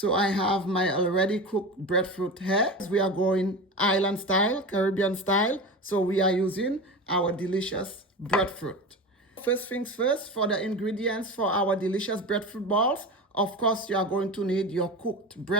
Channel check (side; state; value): both; normal; correlation 0.27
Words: I have my already cooked breadfruit here. We are going island style, Caribbean style. So we are using our delicious breadfruit. First things first, for the ingredients for our delicious breadfruit balls, of course, you are going to need your cooked